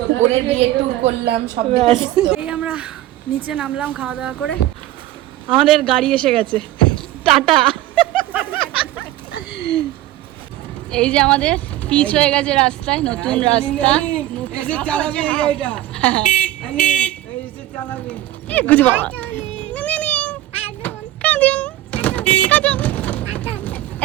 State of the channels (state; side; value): quieter; left; 14.6 dB